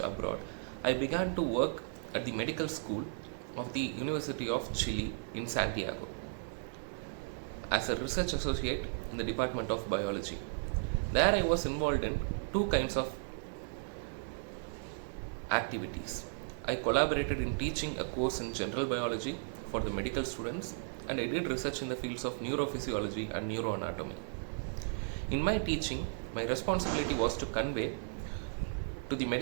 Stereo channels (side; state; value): left; silent; 54 dB below the other